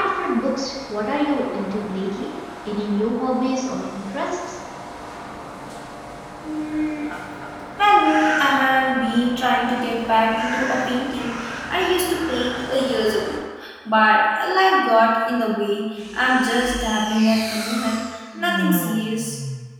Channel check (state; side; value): identical; both; correlation 1.00